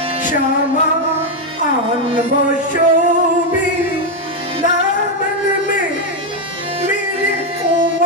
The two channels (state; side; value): normal; both; correlation 0.04